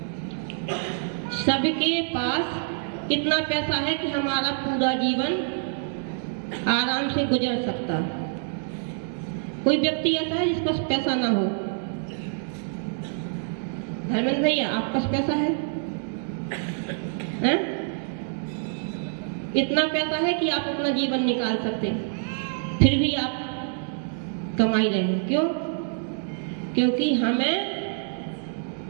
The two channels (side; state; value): left; silent; digital silence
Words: सबके पास कितना पैसा है कि हमारा पूरा जीवन आराम से गुजर सकता? कोई व्यक्ति ऐसा है जिसके पास पैसा ना हो? धर्मेंद्र भैया, आपके पास पैसा है? हैं? इतना पैसा है कि आप अपना जीवन निकाल सकते, फिर भी आप कमाई रहे हैं। क्यों? क्योंकि हमें